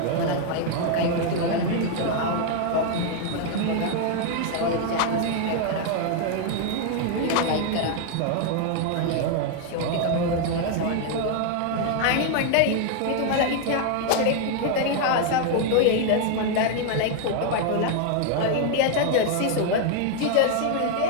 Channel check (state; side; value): different; both; correlation 0.00